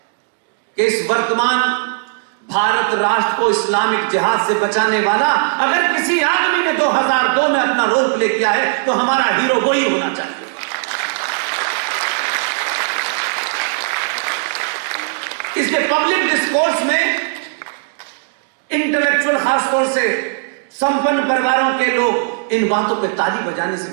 कि इस वर्तमान भारत राष्ट्र को इस्लामिक जिहाद से बचाने वाला अगर किसी आदमी ने 2002 में अपना रोल प्ले किया है तो हमारा हीरो वही होना चाहिए। इसलिए पब्लिक डिस्कोर्स में इंटेलेक्चुअल खासतौर से संपन्न परिवारों के लोग इन बातों पे ताली बजाने से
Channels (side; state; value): left; silent; digital silence